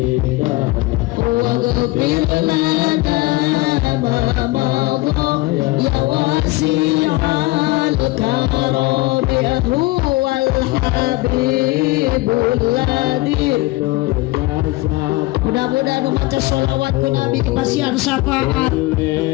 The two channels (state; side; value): quieter; right; 20.8 dB